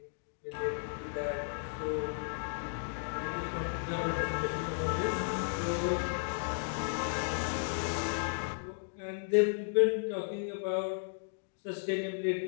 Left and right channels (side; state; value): right; silent; digital silence